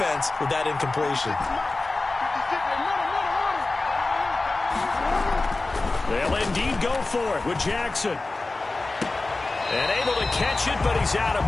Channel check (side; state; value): right; quieter; 3.3 dB